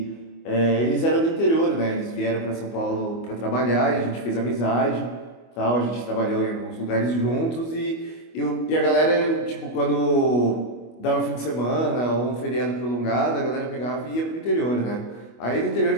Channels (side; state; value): right; late; 25 ms